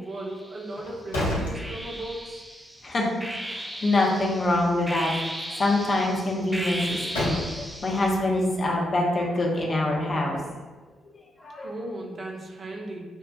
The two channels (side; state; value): both; normal; correlation 0.81